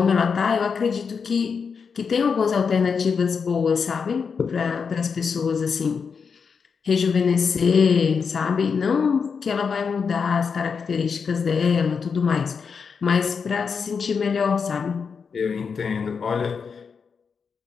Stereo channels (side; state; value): right; quieter; 5.8 dB